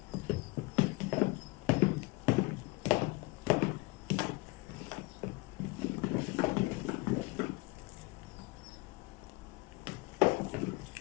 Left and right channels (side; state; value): right; quieter; 22.4 dB